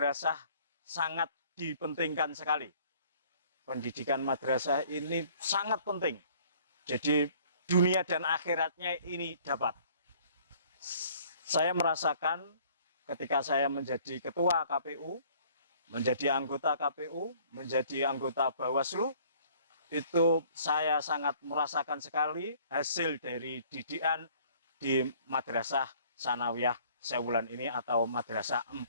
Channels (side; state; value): both; inverted; correlation -0.56